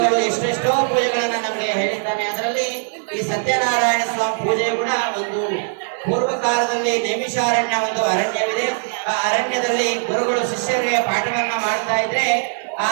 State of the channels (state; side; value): silent; left; 66 dB below the other